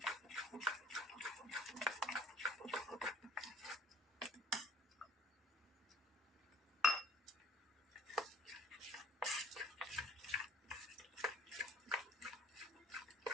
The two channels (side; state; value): both; normal; correlation 0.56